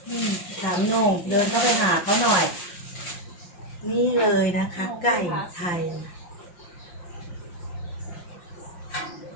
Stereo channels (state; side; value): late; right; 5.7 ms